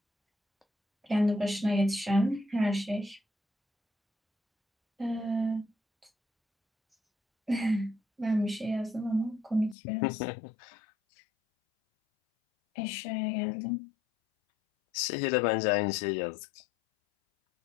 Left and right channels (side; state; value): right; drops out; at 9.8 s